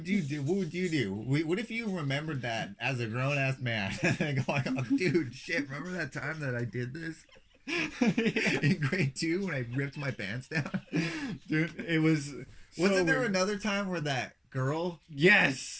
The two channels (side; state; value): both; identical; correlation 1.00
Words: you do? What if you remembered that as a grown-ass man? And going, oh, dude, shit, remember that time that I did this? In grade 2 when I ripped my pants down. Dude, it was... Wasn't there another time where that girl...